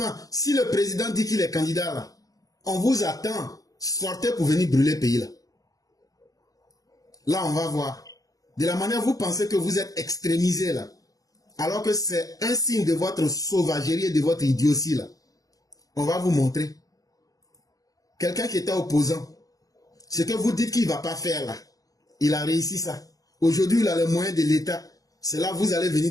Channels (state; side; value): late; right; 0.17 ms